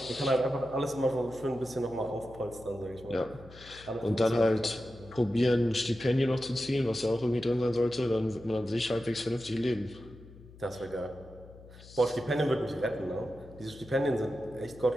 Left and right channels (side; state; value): left; noise; hum, 20 dB below the sound